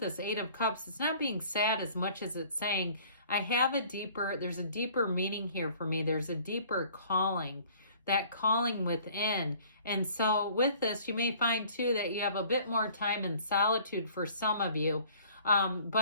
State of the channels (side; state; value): both; inverted; correlation -0.52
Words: this 8 of Cups, it's not being sad as much as it's saying, there's a deeper meaning here for me. There's a deeper calling, that calling within. And so with this, you may find too that you have a bit more time in solitude for some of you.